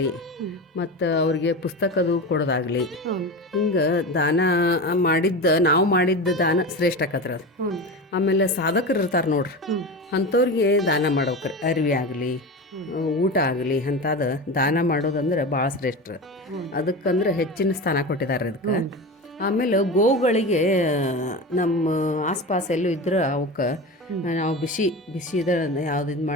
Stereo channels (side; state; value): both; normal; correlation 0.26